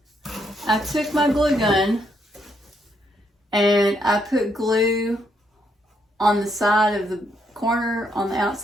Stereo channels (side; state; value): both; normal; correlation 0.75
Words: I took my glue gun and I put glue on the side of the corner on the